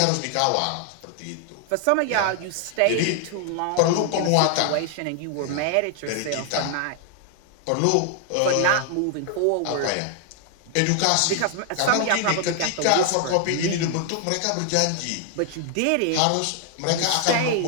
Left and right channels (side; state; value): both; different; correlation 0.00